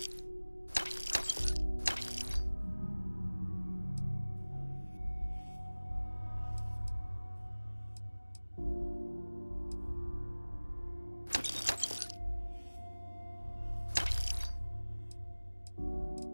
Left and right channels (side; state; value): both; inverted; correlation -1.00